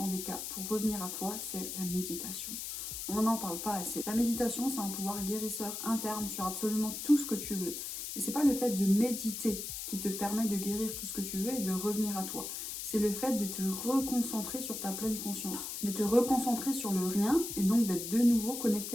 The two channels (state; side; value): noise; left; hiss, 6 dB below the sound